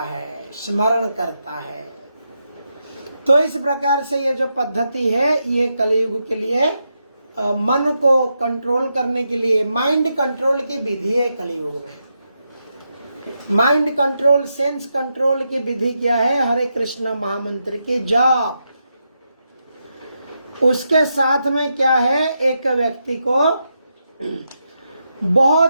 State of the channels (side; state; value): both; inverted; correlation -0.84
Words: स्मरण करता है। तो इस प्रकार से ये जो पद्धति है ये कलियुग के लिए मन को कंट्रोल करने के लिए, माइंड कंट्रोल की विधि है कलियुग में। माइंड कंट्रोल, सेंस कंट्रोल की विधि क्या है? हरे कृष्ण महामंत्र की जाप। उसके साथ में क्या है? एक व्यक्ति को